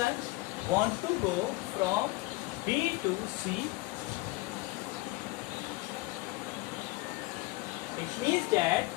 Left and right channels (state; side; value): quieter; right; 21.5 dB